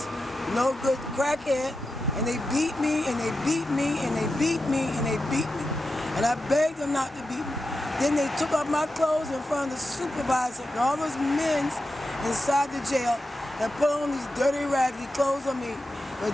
no good crackhead, and they beat me and they beat me and they beat me and they beat me. And I begged them not to beat me. Then they took off my clothes in front of the supervisor and all those men inside the jail and put on these dirty raggedy clothes on me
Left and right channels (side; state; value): both; normal; correlation 0.90